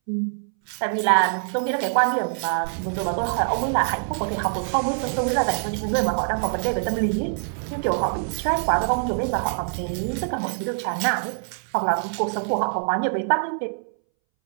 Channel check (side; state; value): left; silent; 62 dB below the other